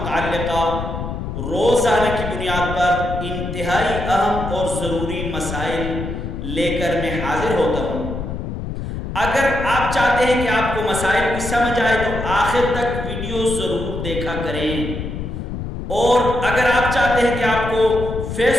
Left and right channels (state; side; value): noise; left; rumble, 6 dB below the sound